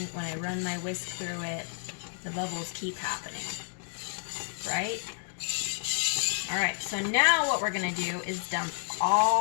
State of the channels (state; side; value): silent; right; digital silence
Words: When I run my whisk through it, the bubbles keep happening, right? All right, so now what we're gonna do is dump